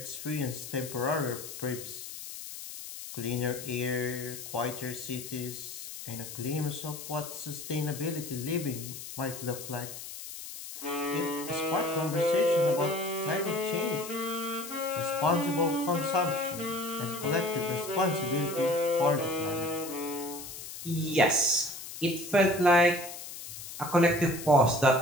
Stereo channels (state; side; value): noise; left; hiss, 11 dB below the sound